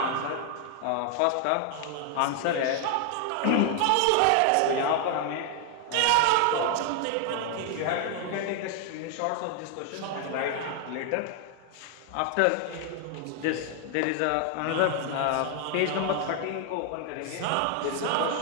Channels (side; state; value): both; different; correlation 0.00